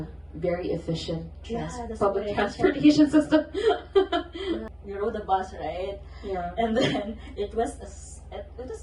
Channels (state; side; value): identical; both; correlation 1.00